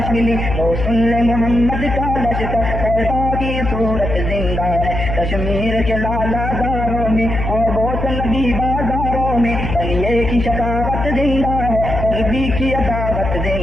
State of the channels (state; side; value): noise; left; hum, 4 dB below the sound